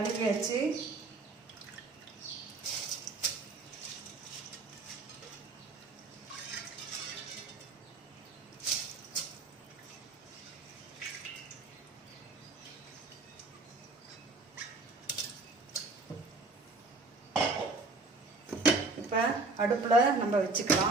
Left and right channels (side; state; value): left; quieter; 3.5 dB